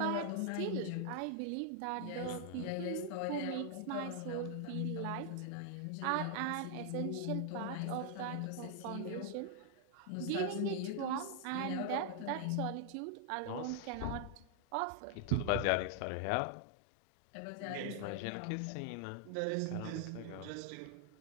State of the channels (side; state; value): both; different; correlation 0.00